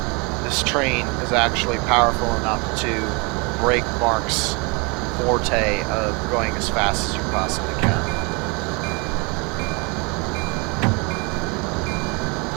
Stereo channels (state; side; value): quieter; left; 30.2 dB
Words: This train is actually powerful enough to break MARC's forte of going as fast as you possibly can.